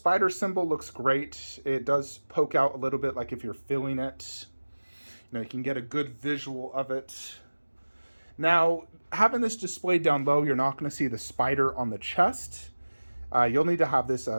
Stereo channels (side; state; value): both; inverted; correlation -1.00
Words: symbol looks great. It does poke out a little bit like if you're feeling it. You can get a good visual of it. Now, having this displayed down low, you're not going to see the spider on the chest. You'll need to have this